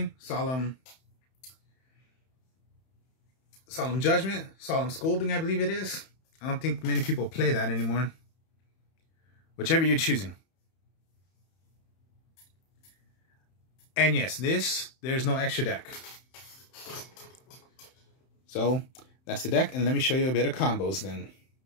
Solemn Judgment, Solemn Scolding, I believe it is. I don't think many people play that anymore. Whichever you're choosing. And yes, there's no extra deck. So, that's the deck, and let me show you a bit of combos then.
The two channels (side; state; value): right; late; 31 ms